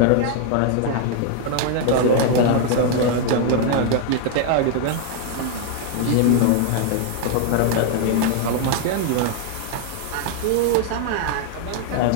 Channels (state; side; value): different; both; correlation 0.00